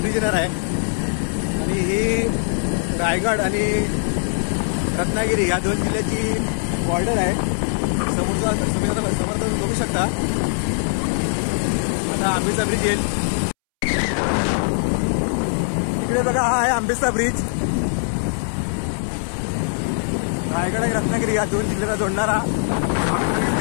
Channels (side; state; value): right; silent; 65 dB below the other